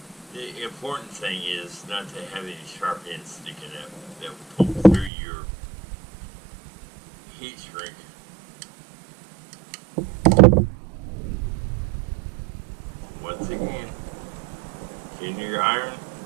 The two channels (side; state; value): left; drops out; at 5.1 s